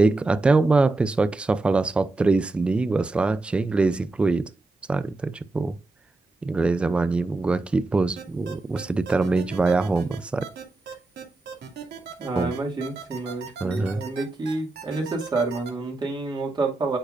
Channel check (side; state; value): left; quieter; 3.1 dB